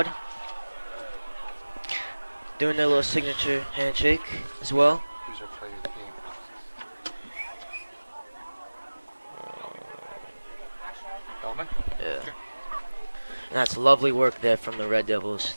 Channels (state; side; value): inverted; both; correlation -1.00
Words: Doing their little signature handshake as well. Yeah. And that's lovely work there from the Red Devils